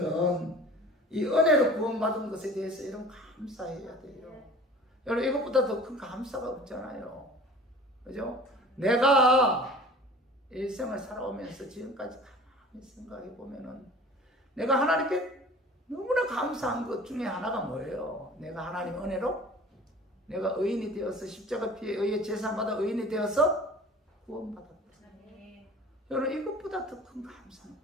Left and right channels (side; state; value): both; normal; correlation 0.44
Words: 이 은혜로 구원받은 것에 대해서 여러분 감사해야 돼요. 여러분 이것보다 더 큰 감사가 없잖아요. 그죠? 내가 일생을 살아오면서 지금까지 가만히 생각해 보면은 내가 하나님께 너무나 감사한 것 중에 하나가 뭐예요? 내가 하나님의 은혜로 내가 의인이 되어서 십자가 피에 의해 제사받아 의인이 되어서 구원받았다. 여러분 이것보다 더 큰 감사는